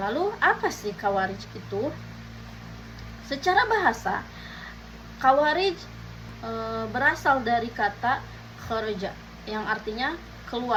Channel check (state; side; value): identical; both; correlation 1.00